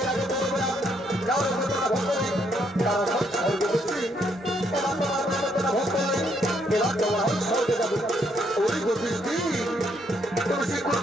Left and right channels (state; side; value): normal; both; correlation 0.72